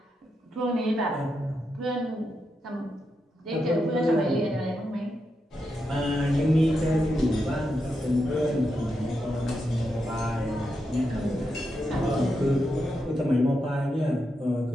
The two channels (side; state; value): both; normal; correlation 0.85